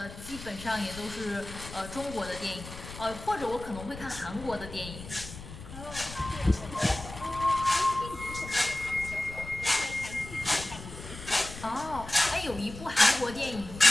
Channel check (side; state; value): left; noise; rumble, 12 dB below the sound